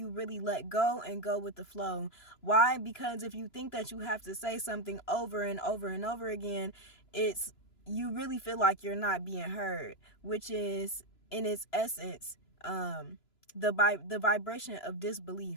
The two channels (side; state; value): right; late; 3.0 ms